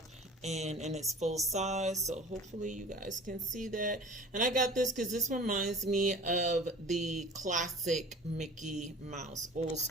and in its full size. So hopefully you guys can see that. And I got this because this reminds me of the classic Mickey Mouse, old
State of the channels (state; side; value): normal; both; correlation 0.42